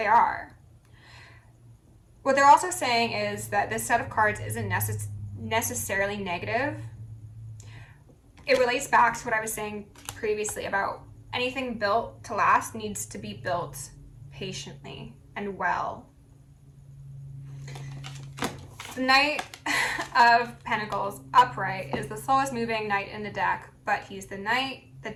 are. What they're also saying is that this set of cards isn't necessarily negative. It relates back to what I was saying previously about anything built to last needs to be built patiently and well. The Knight of Pentacles upright is the slowest moving knight in the deck, but he's the knight that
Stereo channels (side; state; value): both; identical; correlation 1.00